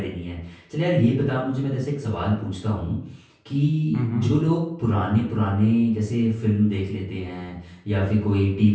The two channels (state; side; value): identical; both; correlation 1.00